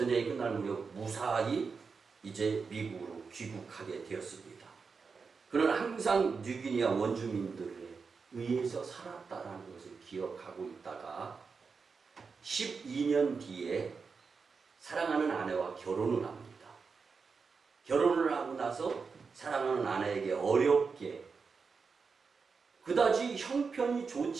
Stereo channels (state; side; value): quieter; left; 5.1 dB